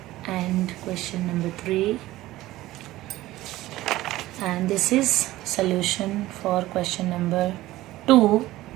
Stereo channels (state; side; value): quieter; left; 16.6 dB